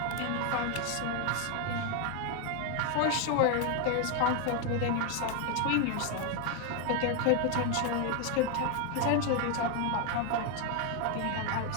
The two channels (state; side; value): different; both; correlation 0.01